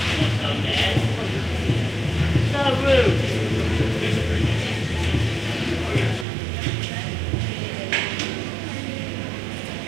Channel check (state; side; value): drops out; left; at 6.2 s